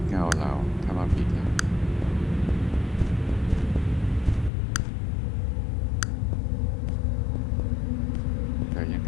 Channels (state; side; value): drops out; right; at 4.5 s